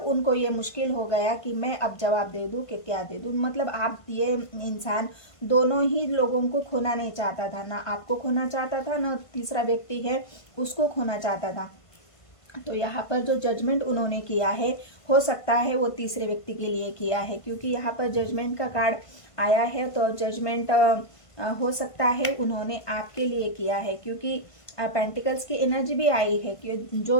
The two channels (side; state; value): right; late; 1.5 ms